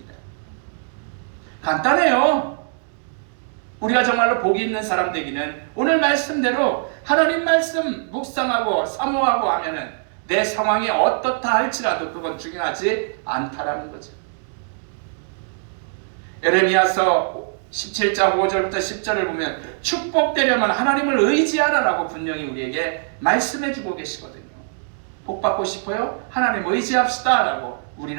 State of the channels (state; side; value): silent; left; digital silence